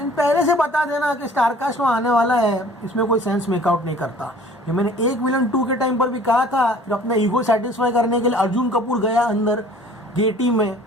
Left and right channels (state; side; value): normal; both; correlation 0.50